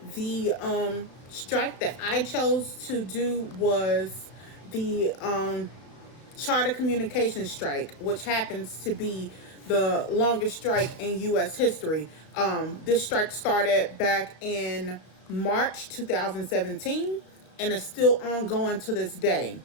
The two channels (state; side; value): late; right; 34 ms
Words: The strike that I chose to do was the Charter Communications strike, which happens to be the longest strike in U.S. history. This strike started back in March 2017 and is still ongoing to this day.